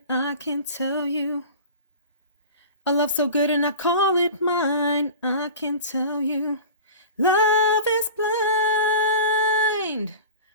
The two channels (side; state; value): both; inverted; correlation -0.36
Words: I can tell you. A love so good and I call it mine, I can tell you. Love is blind,